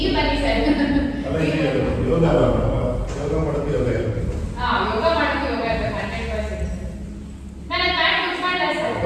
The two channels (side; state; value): both; identical; correlation 1.00